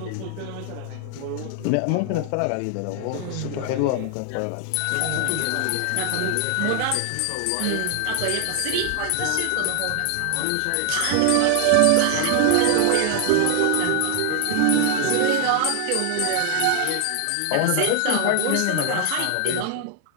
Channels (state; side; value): different; both; correlation 0.00